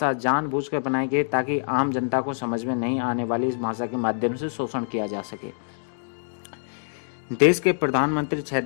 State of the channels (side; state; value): right; silent; digital silence